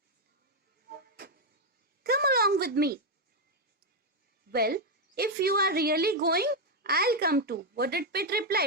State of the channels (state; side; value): normal; both; correlation 0.02